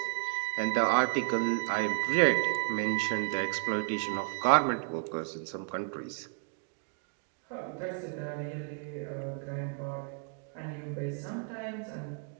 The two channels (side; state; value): left; quieter; 36.1 dB